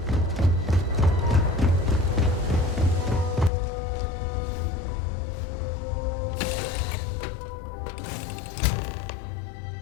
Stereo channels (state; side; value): drops out; right; at 3.5 s